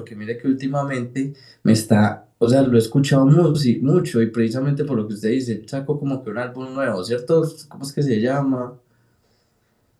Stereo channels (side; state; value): both; identical; correlation 1.00